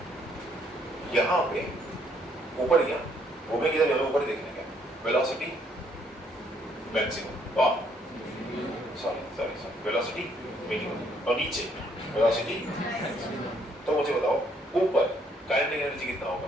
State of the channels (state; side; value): normal; both; correlation 0.68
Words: यहाँ पे ऊपर गया, घूमे किधर जाना, ऊपर देखने का velocity maximum, sorry velocity minimum, और नीचे वेलोसिटी। तो मुझे बताओ ऊपर काइनेटिक एनर्जी कितना